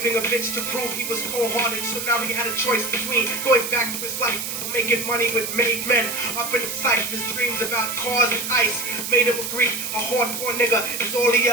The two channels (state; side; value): noise; right; hiss, 5 dB below the sound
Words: a bitch to prove he was cold-hearted. So now he had a choice between going back to his life or making money with made men. Up in the sight, his dreams about cars and ice made him agree a hardcore nigga is all he